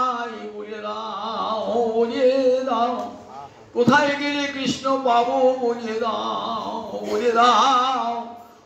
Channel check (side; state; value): both; identical; correlation 1.00